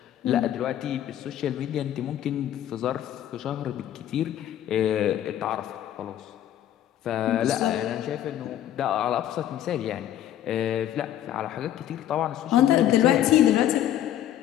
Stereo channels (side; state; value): right; quieter; 11.6 dB